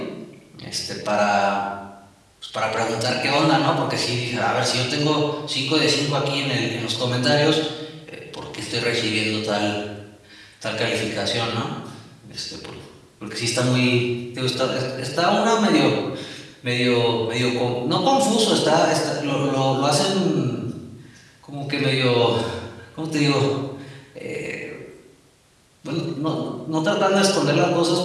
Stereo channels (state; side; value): identical; both; correlation 1.00